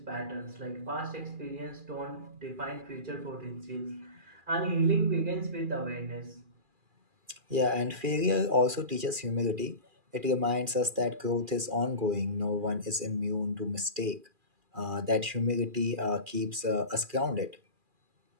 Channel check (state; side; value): late; left; 2.4 ms